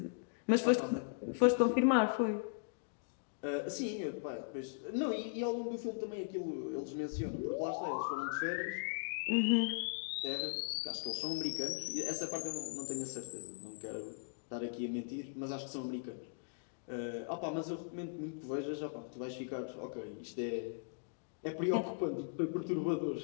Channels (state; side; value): silent; right; digital silence